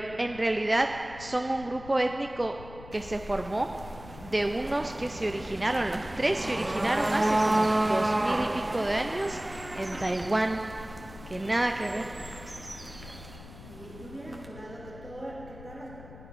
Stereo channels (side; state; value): left; noise; rumble, 16 dB below the sound